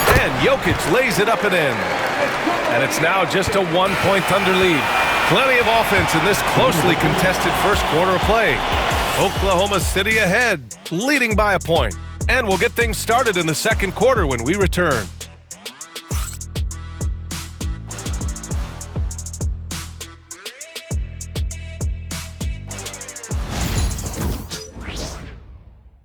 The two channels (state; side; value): identical; both; correlation 1.00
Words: And Jokic lays it up and in. And it's now just a 1-point Thunder lead. Plenty of offense in this closely contested first quarter of play. Oklahoma City ahead, leading by a point. And we'll get things started in the second quarter when we return.